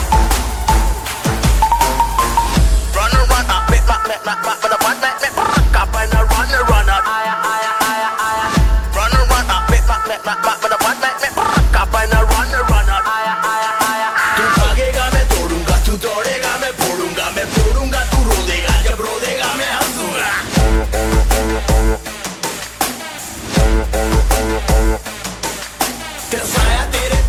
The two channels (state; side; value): identical; both; correlation 1.00